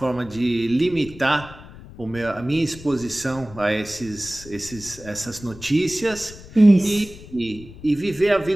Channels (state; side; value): noise; left; rumble, 17 dB below the sound